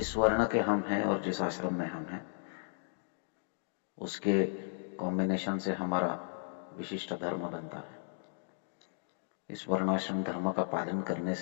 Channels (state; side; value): silent; right; digital silence